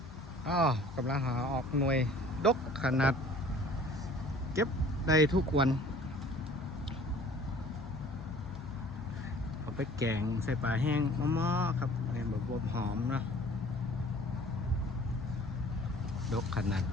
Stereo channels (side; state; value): both; normal; correlation 0.50